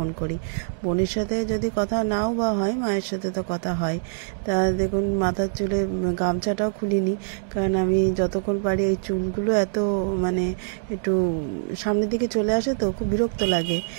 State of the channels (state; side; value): silent; left; digital silence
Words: করি। বোনের সাথে যদি কথা নাও বা হয়, মায়ের সাথে তো কথা হয়। তা দেখুন মাথার চুলে গামছাটাও খুলিনি, কারণ আমি যতক্ষণ পারি এই চুলগুলো এত মানে একটু সামনের দিকে চলে আসে তো খুব বিরক্ত লাগে।